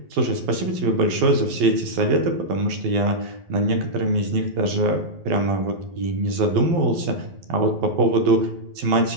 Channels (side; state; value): left; late; 12 ms